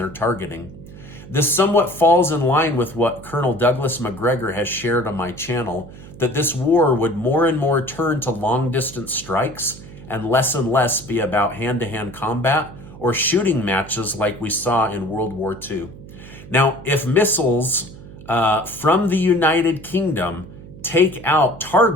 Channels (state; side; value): noise; right; hum, 17 dB below the sound